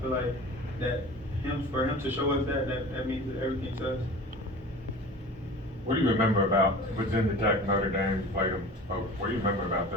feel like that for him to show us that means that everything to us. What do you remember about Virginia Tech, Notre Dame? You played them both. What do you remember about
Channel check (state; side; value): normal; both; correlation 0.39